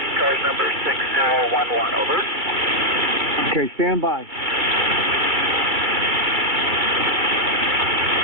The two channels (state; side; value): late; left; 2.2 ms